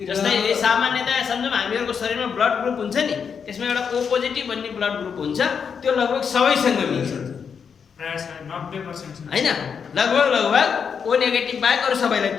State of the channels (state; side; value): quieter; right; 6.6 dB